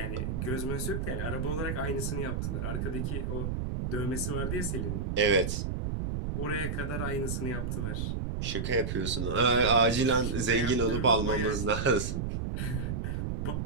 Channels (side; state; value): right; noise; rumble, 2 dB below the sound